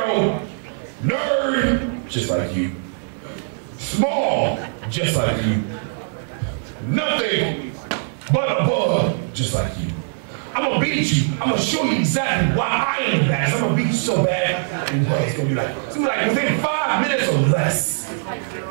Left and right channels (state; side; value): silent; left; digital silence